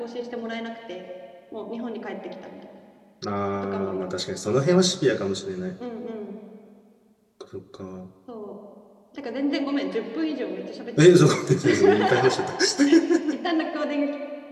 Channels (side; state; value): both; identical; correlation 1.00